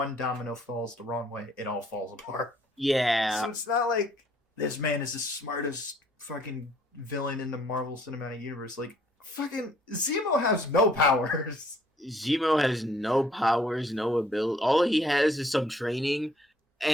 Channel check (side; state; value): both; normal; correlation 0.62